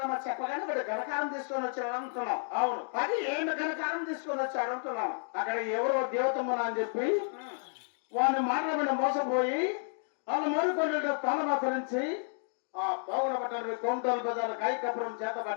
చెప్పగానే వాడు ఘనకారం తీసుకొని వచ్చాడు అనుకున్నాం. అవును, 10 ఏళ్ళు ఘనకారం తీసుకొని వచ్చాడు అనుకున్నాం. అక్కడ ఎవరో దేవతమ్మన అని చెప్పి వాడిని మాట్లాడిన మోసపోయి వాళ్ళు మరుకొని తాళమాకరించి ఆ బాగున పట్టణం కౌంటర్ బజార్ కాయకపురం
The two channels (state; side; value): silent; right; 57 dB below the other